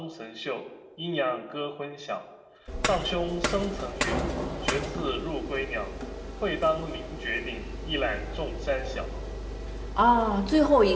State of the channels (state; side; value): identical; both; correlation 1.00